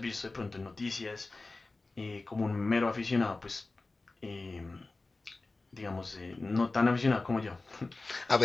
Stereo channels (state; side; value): quieter; right; 3.4 dB